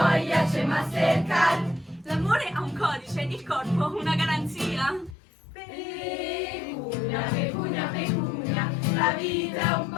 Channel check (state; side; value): drops out; right; at 5.2 s